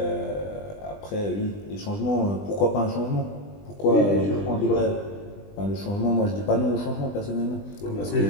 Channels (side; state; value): right; late; 20 ms